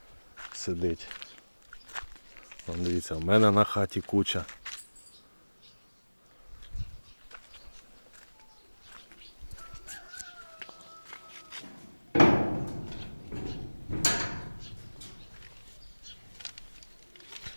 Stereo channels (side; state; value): both; inverted; correlation -1.00